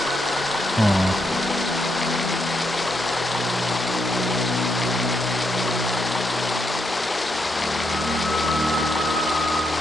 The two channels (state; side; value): normal; both; correlation 0.79